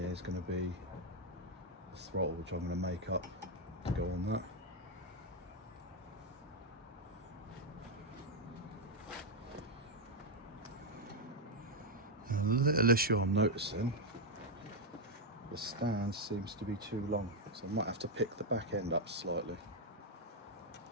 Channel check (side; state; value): both; normal; correlation 0.02